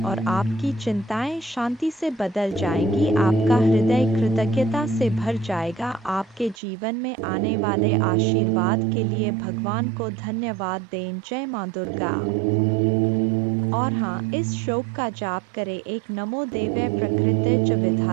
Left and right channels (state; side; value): drops out; left; at 6.6 s